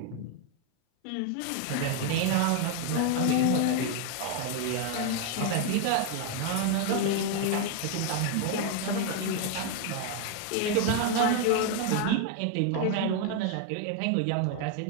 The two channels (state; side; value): different; both; correlation 0.01